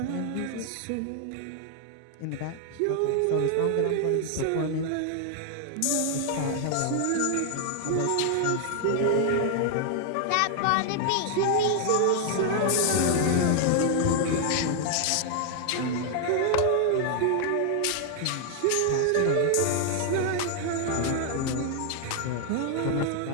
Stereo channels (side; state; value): both; different; correlation 0.00